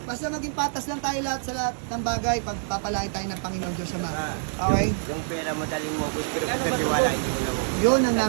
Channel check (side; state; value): left; silent; digital silence